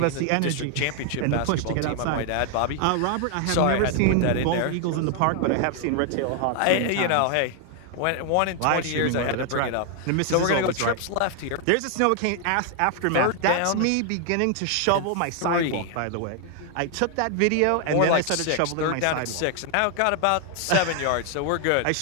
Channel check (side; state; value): both; different; correlation 0.00